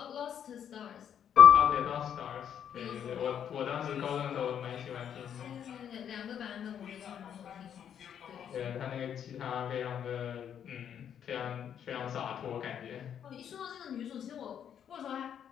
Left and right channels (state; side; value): quieter; right; 8.9 dB